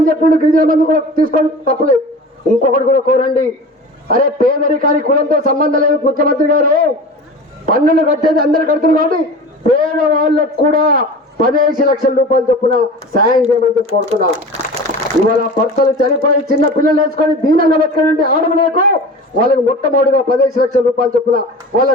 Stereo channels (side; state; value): both; normal; correlation 0.35